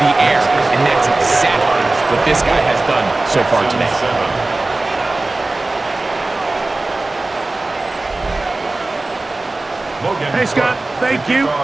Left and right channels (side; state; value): left; quieter; 3.0 dB